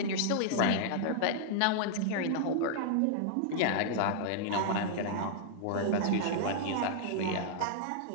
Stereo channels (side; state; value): both; different; correlation -0.01